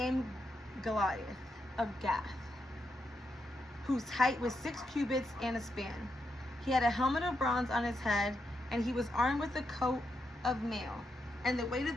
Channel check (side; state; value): both; normal; correlation 0.83